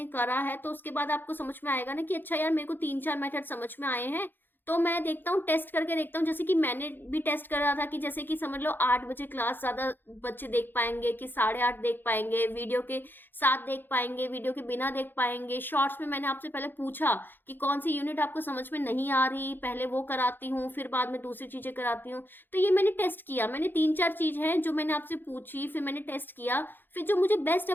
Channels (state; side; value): late; right; 0.095 ms